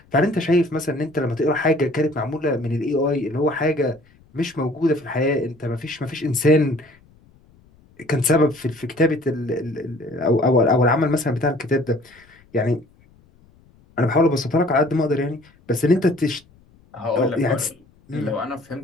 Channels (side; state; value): left; noise; rumble, 30 dB below the sound